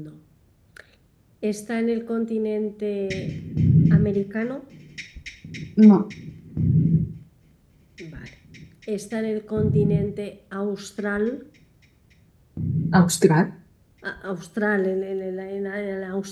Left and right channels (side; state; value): both; identical; correlation 1.00